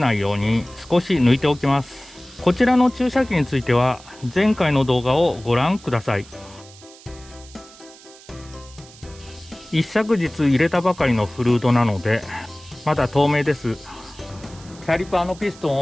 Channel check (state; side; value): noise; right; hiss, 22 dB below the sound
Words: いように少し抜いておきます。こちらの注射器については前回の動画をご覧ください。一昨日入れたばかりのフルードなのでまだ透明です。キャリパーのピストン